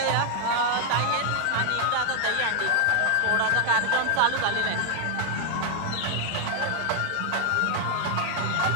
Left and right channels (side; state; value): both; different; correlation 0.00